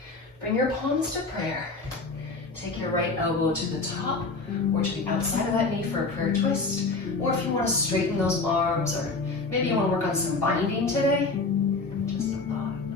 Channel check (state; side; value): quieter; right; 3.7 dB